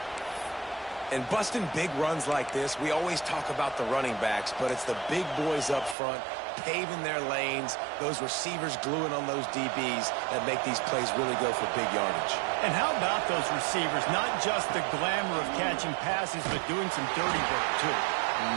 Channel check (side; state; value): left; drops out; at 6.0 s